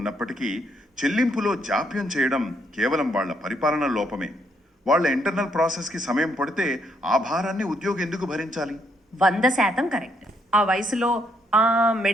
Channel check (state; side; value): normal; both; correlation 0.73